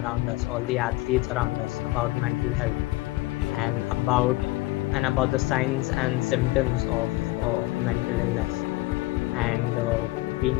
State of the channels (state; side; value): quieter; right; 19.8 dB